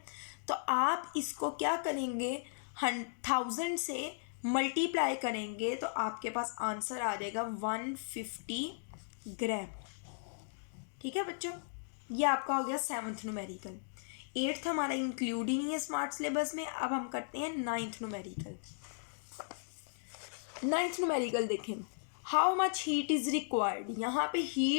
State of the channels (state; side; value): silent; right; digital silence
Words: तो आप इसको क्या करेंगे, 1000 से मल्टीप्लाई करेंगे तो आपके पास आंसर आ जाएगा 150 ग्राम, ठीक है बच्चों। ये आपका हो गया 7th न्यूमेरिकल। 8th हमारा इंक्लूड ही नहीं है स्मार्ट सिलेबस में। अब हम करते हैं 9th न्यूमेरिकल। 9th न्यूमेरिकल देखें, how much heat is required, यहाँ पे